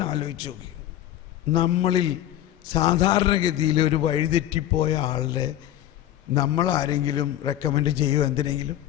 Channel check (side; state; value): right; quieter; 12.7 dB